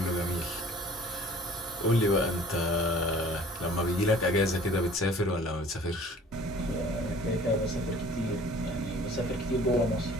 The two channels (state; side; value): normal; both; correlation 0.49